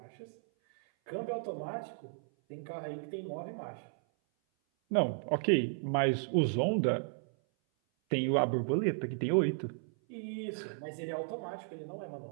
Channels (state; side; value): silent; left; 55 dB below the other